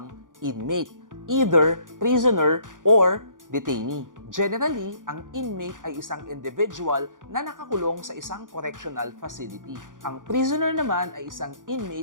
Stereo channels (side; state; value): left; late; 0.88 ms